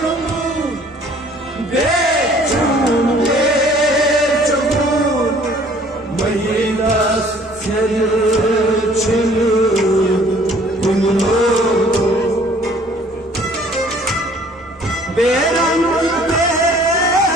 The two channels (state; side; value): normal; both; correlation 0.55